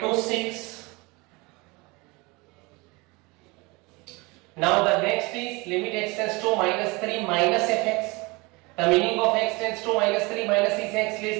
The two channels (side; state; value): left; quieter; 25.5 dB